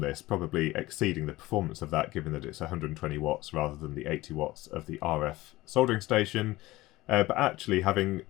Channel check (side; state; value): right; quieter; 18.5 dB